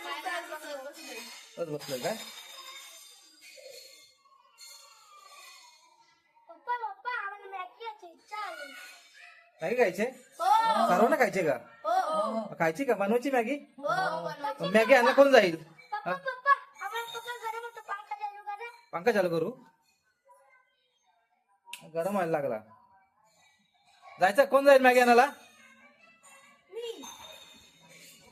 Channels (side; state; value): both; identical; correlation 1.00